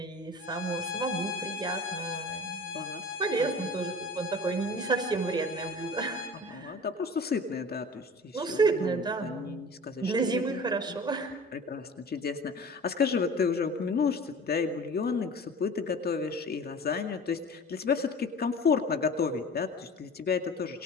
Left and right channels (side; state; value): both; normal; correlation 0.40